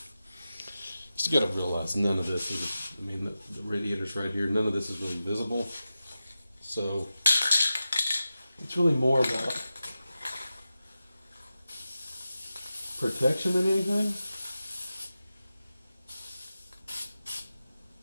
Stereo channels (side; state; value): both; inverted; correlation -0.92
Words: just gotta realize none of this is, I mean, the radiator's right here, none of this is really visible. So it's really more about protection than anything.